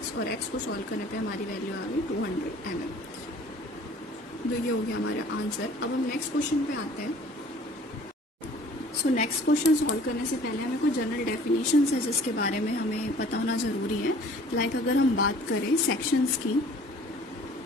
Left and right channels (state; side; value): normal; both; correlation 0.51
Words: और x को सॉल्व करने पे हमारी वैल्यू आ गई 200 mm। तो ये हो गया हमारा आंसर। अब हम नेक्स्ट क्वेश्चन पे आते हैं। सो नेक्स्ट क्वेश्चन सॉल्व करने से पहले हमें कुछ जनरल डेफिनेशंस है जिसके बारे में हमें पता होना ज़रूरी है। लाइक अगर हम बात करें सेक्शंस की,